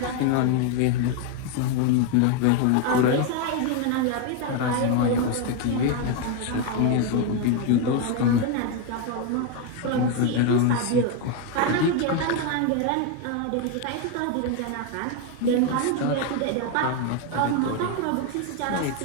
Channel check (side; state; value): both; different; correlation 0.01